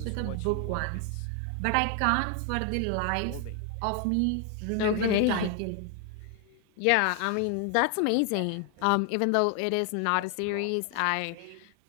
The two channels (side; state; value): both; different; correlation 0.00